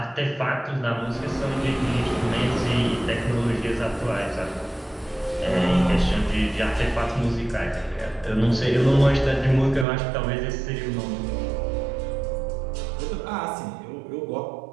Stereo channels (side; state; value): left; drops out; at 9.9 s